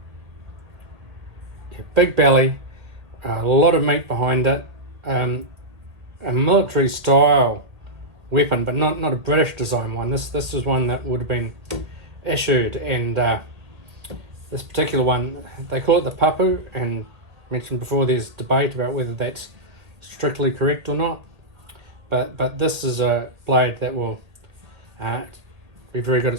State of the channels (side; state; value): left; late; 2.1 ms